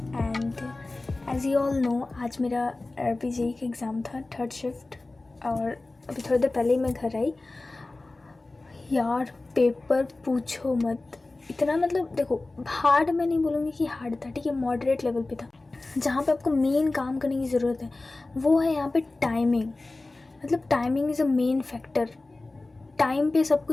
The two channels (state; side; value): quieter; right; 3.1 dB